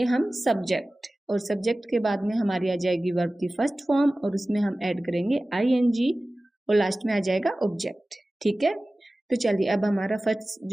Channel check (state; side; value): normal; both; correlation 0.97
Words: हम सब्जेक्ट, और सब्जेक्ट के बाद में हमारी आ जाएगी वर्ब की फर्स्ट फॉर्म, और उसमें हम ऐड करेंगे ING, और लास्ट में आ जाएगा ऑब्जेक्ट। ठीक है, तो चलिए अब हमारा फर्स्ट